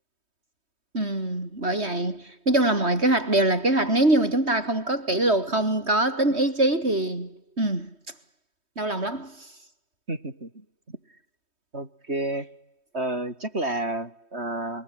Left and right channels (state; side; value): late; left; 3.2 ms